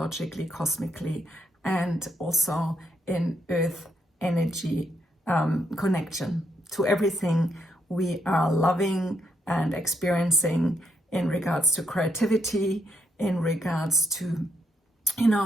cosmically, and also in Earth energy connection to everything we are loving and experiencing in regards to creativity, in regards to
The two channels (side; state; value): both; normal; correlation 0.77